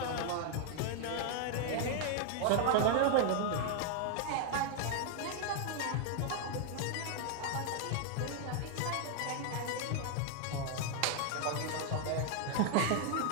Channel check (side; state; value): both; different; correlation 0.00